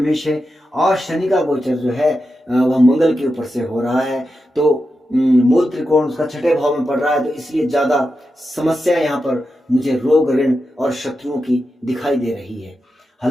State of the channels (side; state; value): both; normal; correlation 0.89